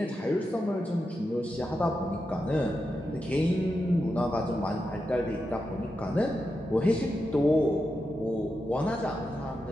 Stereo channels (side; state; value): both; normal; correlation 0.88